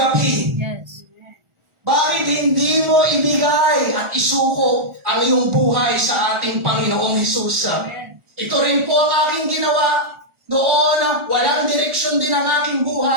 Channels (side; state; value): left; late; 1.4 ms